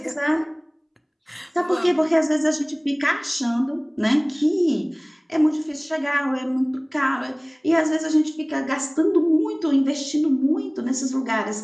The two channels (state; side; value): identical; both; correlation 1.00